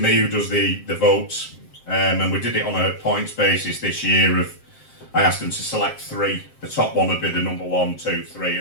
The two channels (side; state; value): right; late; 7.6 ms